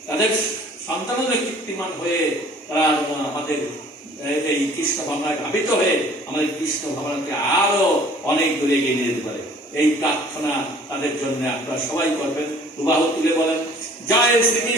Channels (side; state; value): both; normal; correlation 0.52